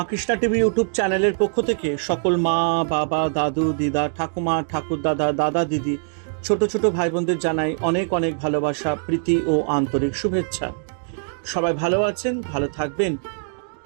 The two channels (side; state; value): left; silent; 64 dB below the other